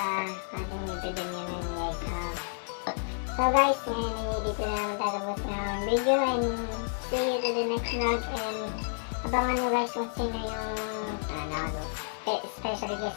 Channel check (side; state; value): right; silent; digital silence